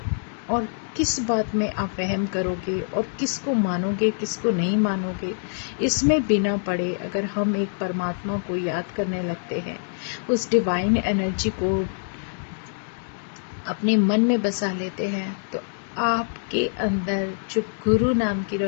और किस बात में आप वहम करोगे और किसको मानोगे किसको नहीं मानोगे? इसमें बिना पड़े अगर हम एक परमात्मा को याद करने लगते हैं, उस डिवाइन एनर्जी को अपने मन में बसा लेते हैं, तो आपके अंदर जो गुरु नाम की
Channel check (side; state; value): right; silent; digital silence